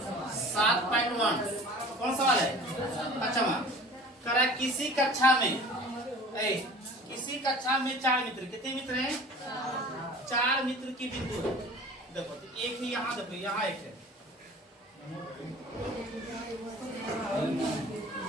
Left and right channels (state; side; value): normal; both; correlation 0.43